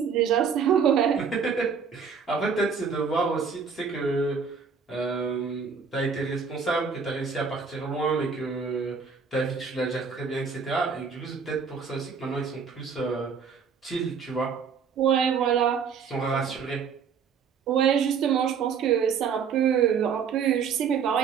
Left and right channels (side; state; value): left; quieter; 6.2 dB